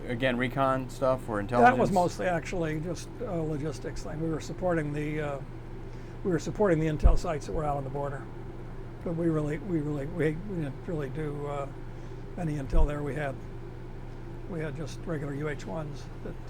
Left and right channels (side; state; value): both; identical; correlation 1.00